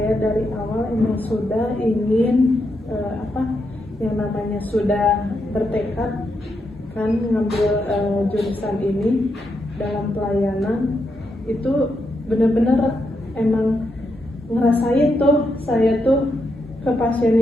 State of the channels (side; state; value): both; normal; correlation 0.82